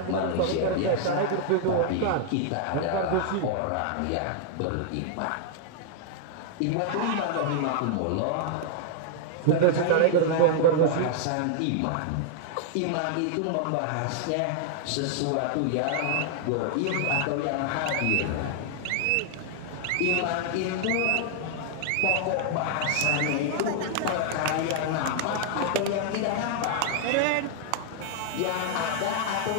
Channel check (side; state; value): both; different; correlation -0.01